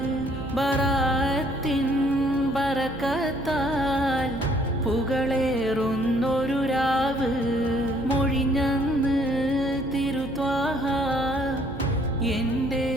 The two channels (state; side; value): noise; right; hum, 13 dB below the sound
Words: ബറാത്തിൻ ബറക്കത്താൽ പുകളേറുന്നൊരു രാവ്. മൊഴിഞ്ഞന്ന് തിരുത്വാഹ എൻ്റെ